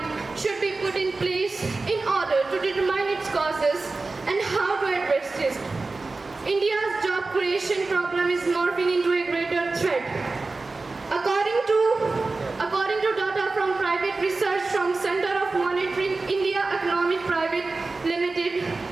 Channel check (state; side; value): quieter; left; 3.6 dB